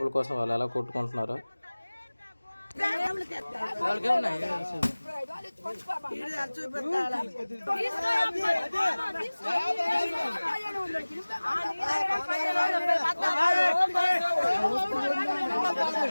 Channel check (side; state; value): both; inverted; correlation -1.00